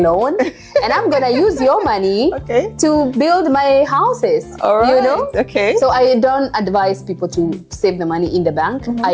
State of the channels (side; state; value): both; identical; correlation 1.00